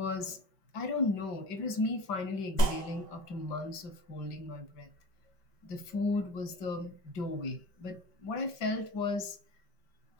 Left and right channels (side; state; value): right; late; 5.2 ms